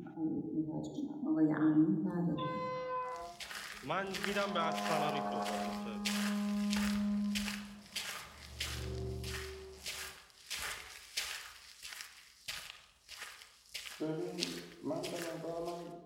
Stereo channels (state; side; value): identical; both; correlation 1.00